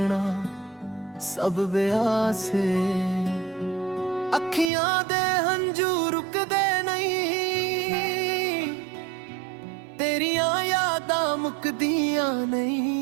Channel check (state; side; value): drops out; left; at 4.7 s